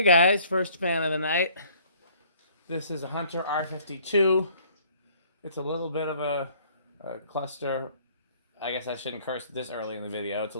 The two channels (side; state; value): both; inverted; correlation -0.58